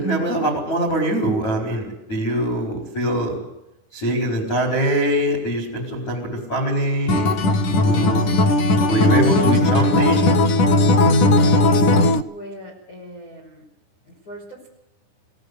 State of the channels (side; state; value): right; late; 10 ms